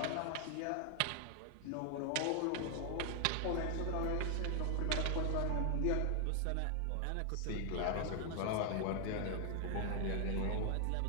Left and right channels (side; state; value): both; different; correlation 0.00